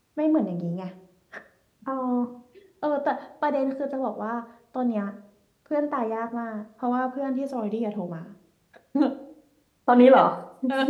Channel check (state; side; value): identical; both; correlation 1.00